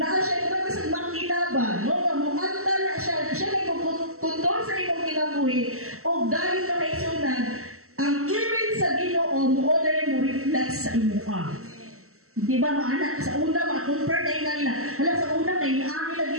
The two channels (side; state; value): left; late; 0.63 ms